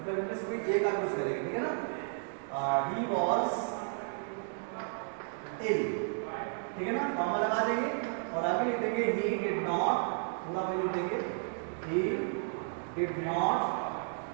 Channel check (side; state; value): left; silent; 56 dB below the other